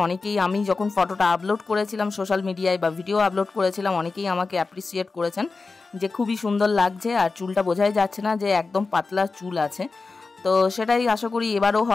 অনেকেই, আমি যখন ফটোটা আপলোড করেছিলাম সোশ্যাল মিডিয়ায় বা ভিডিও আপলোড করেছিলাম, অনেকেই আমাকে অ্যাপ্রিসিয়েট করেছেন যে খুবই সুন্দর লাগছে আর চুলটা বোঝাই যাচ্ছে না যে একদম পাতলা চুল আছে। তো সেটাই আশা করি এবারও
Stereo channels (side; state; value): right; quieter; 4.0 dB